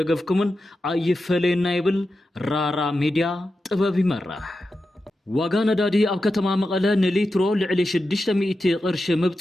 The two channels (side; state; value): both; normal; correlation 0.90